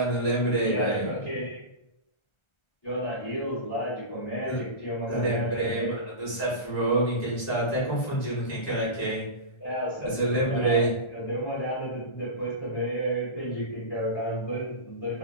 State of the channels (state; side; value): late; right; 1.3 ms